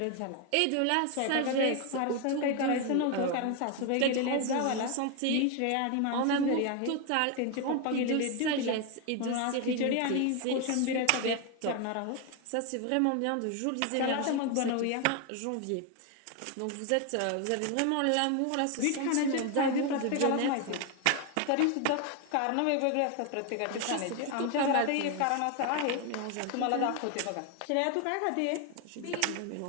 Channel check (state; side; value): different; both; correlation 0.01